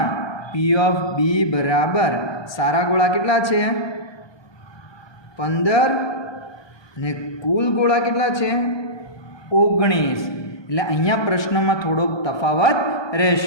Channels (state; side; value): late; right; 1.2 ms